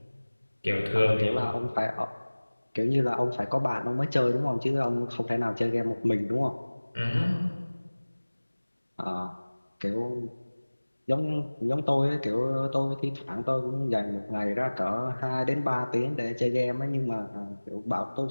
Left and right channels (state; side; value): inverted; both; correlation -1.00